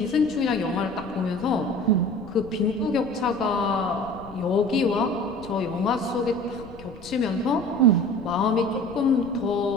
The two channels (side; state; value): left; noise; rumble, 19 dB below the sound